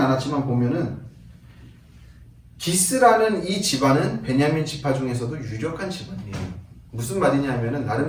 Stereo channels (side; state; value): both; identical; correlation 1.00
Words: 보면은 기스라는 이 집안은 베냐민 지파 중에서도 유력한 집안이에요. 무슨 말이냐면은